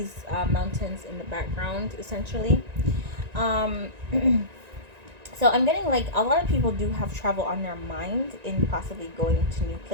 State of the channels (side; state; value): left; late; 1.9 ms